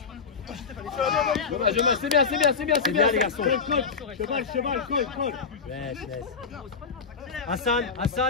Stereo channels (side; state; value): right; quieter; 5.4 dB